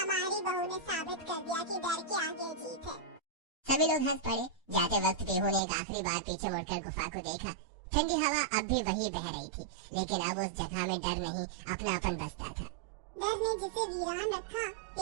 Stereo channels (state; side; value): drops out; left; at 5.6 s